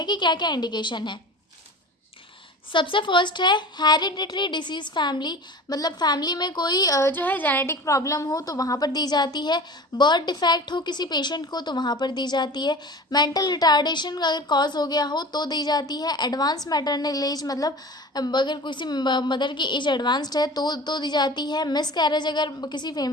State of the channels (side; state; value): both; normal; correlation 0.37